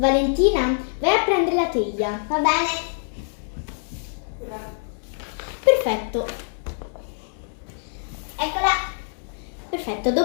vai a prendere la teglia. Va bene? Perfetto. Eccola. Perfetto,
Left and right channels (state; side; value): silent; right; digital silence